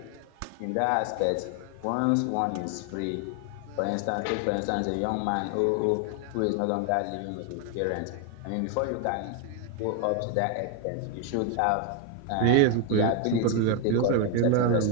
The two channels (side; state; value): both; different; correlation 0.01